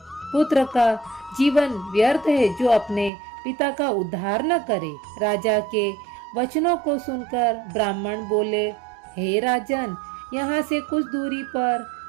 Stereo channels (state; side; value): drops out; left; at 3.1 s